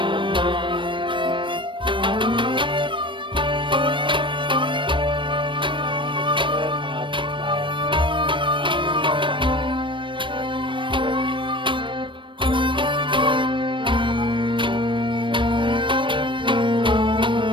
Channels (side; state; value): left; late; 0.24 ms